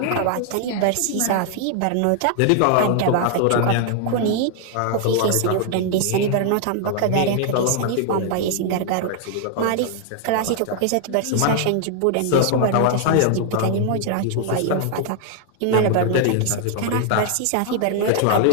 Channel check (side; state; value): both; different; correlation 0.00